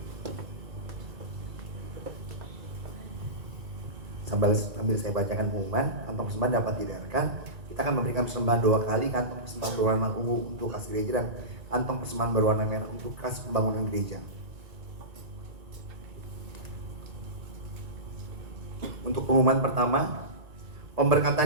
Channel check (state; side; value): late; left; 2.3 ms